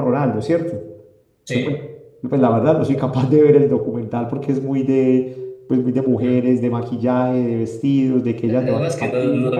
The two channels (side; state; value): both; identical; correlation 1.00